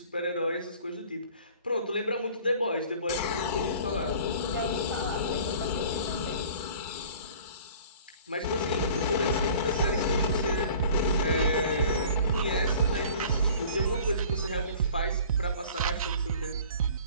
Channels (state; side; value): inverted; both; correlation -0.47